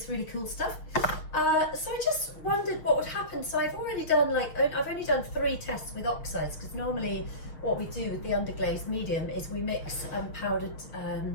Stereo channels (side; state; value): right; late; 6.5 ms